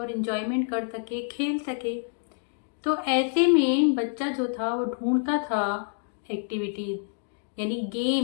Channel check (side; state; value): right; silent; 60 dB below the other